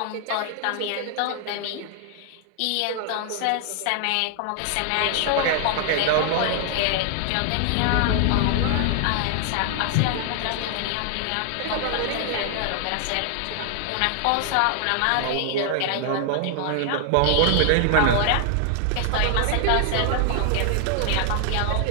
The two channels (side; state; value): both; different; correlation 0.00